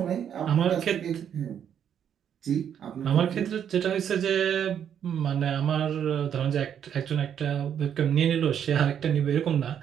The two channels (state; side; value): quieter; left; 8.9 dB